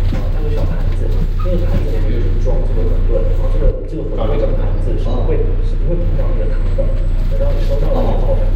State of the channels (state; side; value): identical; both; correlation 1.00